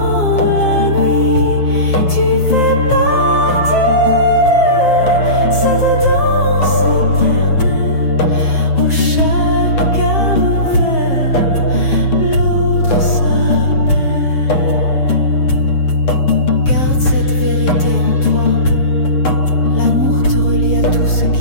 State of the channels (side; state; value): right; late; 7.7 ms